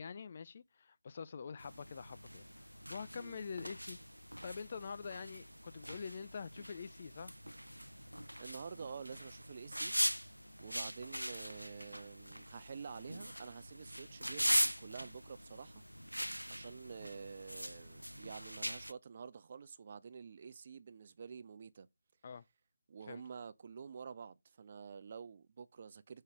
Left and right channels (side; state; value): both; inverted; correlation -0.95